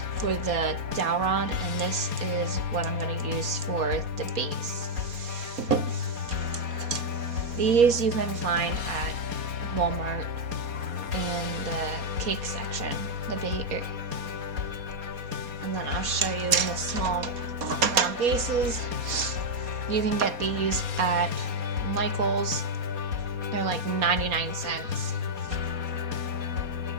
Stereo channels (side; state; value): left; late; 4.2 ms